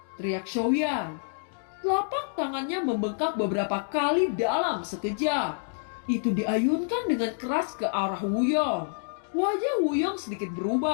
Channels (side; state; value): right; silent; digital silence